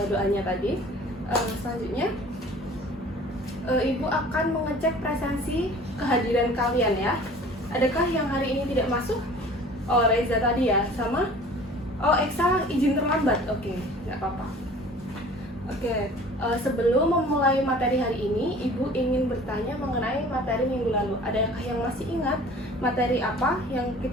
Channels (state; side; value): normal; both; correlation 0.47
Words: doanya tadi. Selanjutnya, Ibu akan mengecek presensi kehadiran kalian ya. Adakah yang hari ini tidak masuk? Oh, Reza tadi ya, sama? Oh, Eksa izin terlambat. Oke, nggak apa-apa. Oke, sebelum memulai materi hari ini, Ibu ingin bertanya mengenai materi minggu lalu. Adakah yang masih ingat materi apa yang